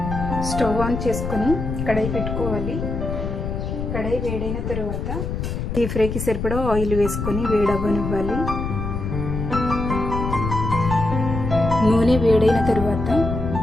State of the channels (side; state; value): left; noise; rumble, 4 dB below the sound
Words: స్టవ్ ఆన్ చేసుకొని కడాయి పెట్టుకోవాలి. కడాయి వేడైన తరువాత డీప్ ఫ్రైకి సరిపడా ఆయిల్ వేసుకొని వేడవ్వనివ్వాలి. నూనె వేడైన తరువాత